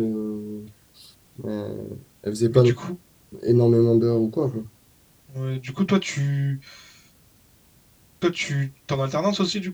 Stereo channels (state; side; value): identical; both; correlation 1.00